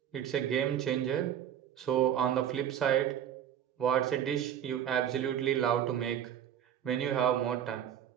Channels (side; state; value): left; quieter; 9.9 dB